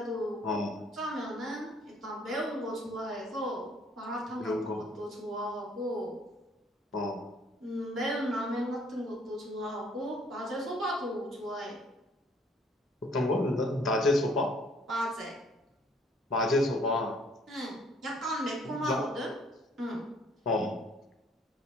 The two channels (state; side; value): normal; both; correlation 0.61